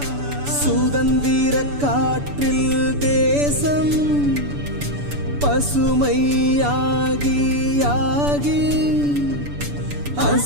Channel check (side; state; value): left; late; 6.9 ms